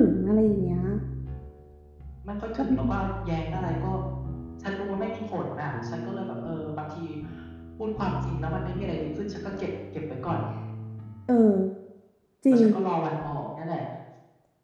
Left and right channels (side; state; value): both; identical; correlation 1.00